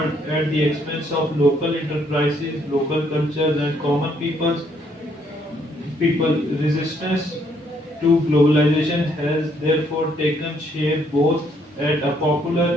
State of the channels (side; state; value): both; normal; correlation 0.69